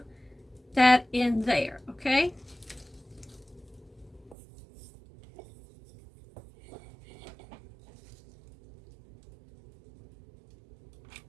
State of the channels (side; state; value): left; drops out; at 4.4 s